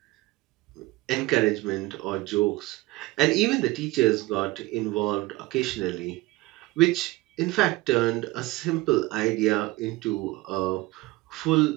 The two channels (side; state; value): left; quieter; 20.5 dB